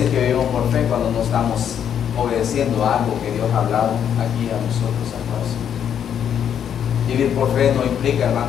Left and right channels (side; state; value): right; quieter; 8.8 dB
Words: que vivimos por fe cuando no estamos obedeciendo a algo que Dios ha hablado aquí a nosotros a todos. Vivir por fe no implica,